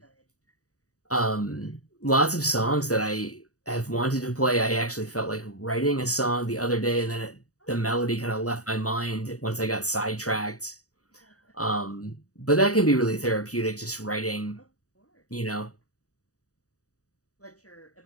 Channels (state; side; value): late; right; 0.66 ms